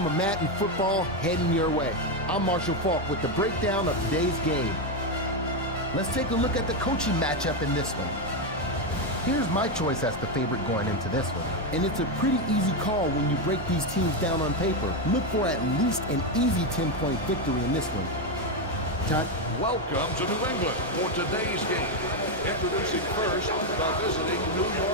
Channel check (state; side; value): normal; both; correlation 0.07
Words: of Madden football heading your way. I'm Marshall Falk with the breakdown of today's game. Let's take a look at the coaching matchup in this one. Here's my choice as the favorite going into this one. And it's a pretty easy call when you break these teams down on paper. Look for at least an easy 10-point victory in this one. Todd? Welcome to New England for today's game. Introducing first the visiting New